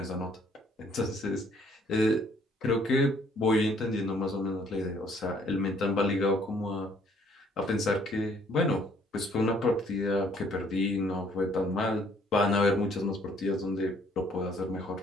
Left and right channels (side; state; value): both; normal; correlation 0.62